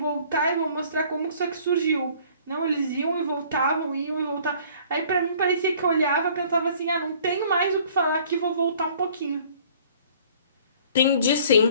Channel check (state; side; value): inverted; both; correlation -0.54